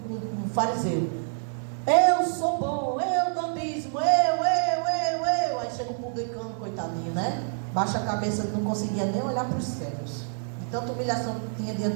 fariseu: eu sou bom, eu dou dízimo, eu. Aí chega o publicano, coitadinho, né? Baixa a cabeça, ele não conseguia nem olhar para os céus. Tanta humilhação que tinha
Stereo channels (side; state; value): left; silent; 60 dB below the other